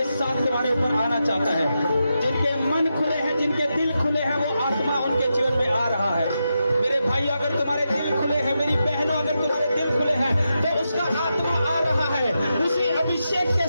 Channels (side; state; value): both; inverted; correlation -0.87